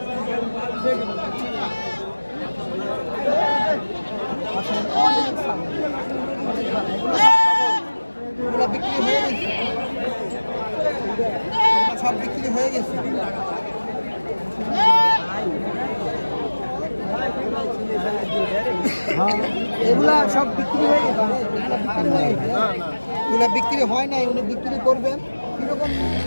সব বিক্রি হয়ে গেছে। এগুলা সব বিক্রি হয়ে গেছে, এগুলা বিক্রি হয় নাই, উনি বিক্রি করবেন। কিরকম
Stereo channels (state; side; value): inverted; both; correlation -1.00